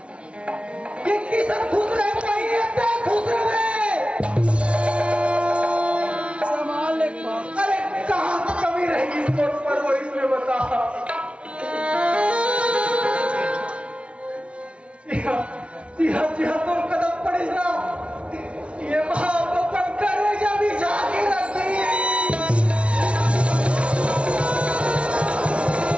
कि किसान खुश रहे चाहिए खुश रहे संभाल ले। अरे कहाँ कमी रहेगी इस कोट पर वो इसमें बता। जी हाँ तो कदम पड़े ना ये महापन करे जब जाके रखी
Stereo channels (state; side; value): late; left; 0.060 ms